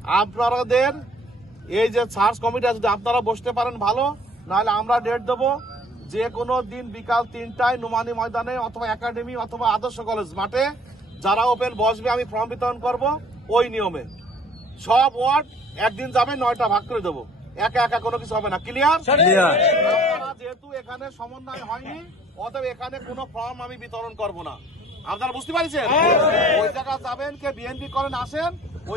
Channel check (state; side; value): normal; both; correlation 0.55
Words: আপনাদের এই যে সার্চ কমিটি যদি আপনারা বসতে পারেন ভালো, নাহলে আমরা ডেট দেবো যে কোনো দিন বিকাল 3টায় নোমানী ময়দানে অথবা একাডেমি অথবা আদর্শ কলেজ মাঠে যারা ওপেন বসবে আমি ফর্ম বিতরণ করব। ওই নিয়মে সব ওয়ার্ড একদিন যাবে, 9টা ভাগ করে দেবো, একা একা কোনো কিছু হবে না। ক্লিয়ার? যেহেতু এখানে সমন্বয় হয়নি, অতএব এখানে কোনো ফর্ম আমি বিতরণ করব না। আপনারা বুঝতে পারছেন? ওই জায়গা যাবেন, কে বিএনপি করেন আসেন,